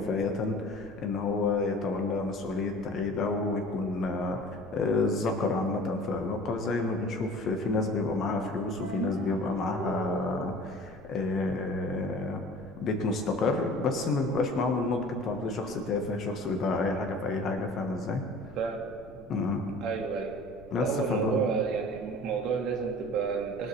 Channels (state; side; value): noise; left; rumble, 21 dB below the sound